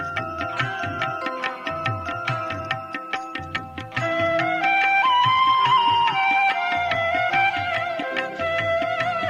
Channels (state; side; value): identical; both; correlation 1.00